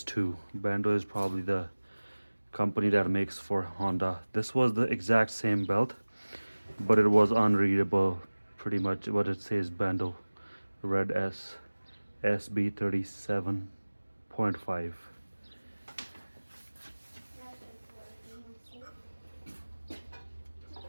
Bando is probably the company that makes for Honda. This was the exact same belt, but it was unreadable. Pretty much what it says, Bando Red S SB37.5.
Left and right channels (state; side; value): inverted; both; correlation -1.00